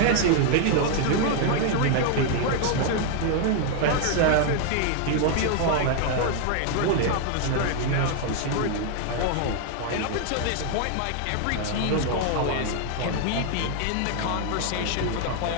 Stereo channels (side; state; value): both; different; correlation 0.00